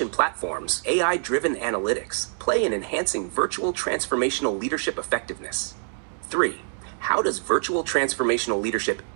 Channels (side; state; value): left; silent; digital silence